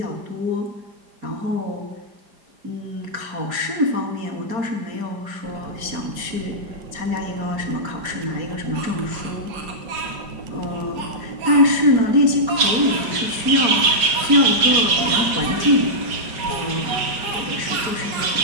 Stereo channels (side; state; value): left; late; 5.0 ms